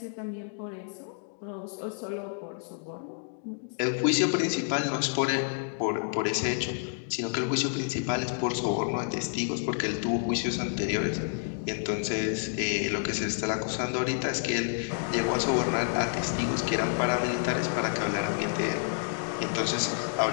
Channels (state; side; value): silent; right; digital silence